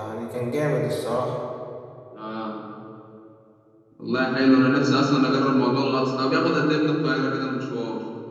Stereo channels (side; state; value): both; identical; correlation 1.00